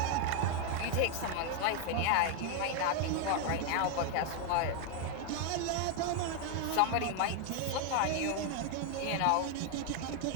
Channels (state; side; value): different; both; correlation 0.01